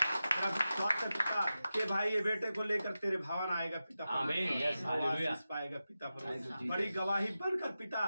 मेरा विश्वास है पिता कि भाई ये बेटे को लेकर तेरे भवन आएगा पिता आमीन। Yes, hallelujah. आशीष पाएगा पिता परमेश्वर। Thank you, बड़ी Jesus. गवाही बनकर पिता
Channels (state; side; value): inverted; both; correlation -0.93